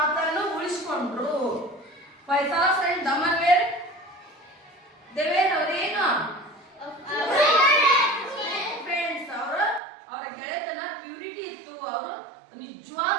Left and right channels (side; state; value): left; drops out; at 9.8 s